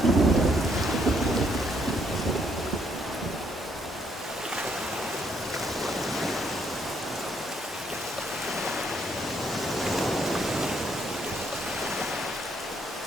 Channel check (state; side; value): normal; both; correlation 0.71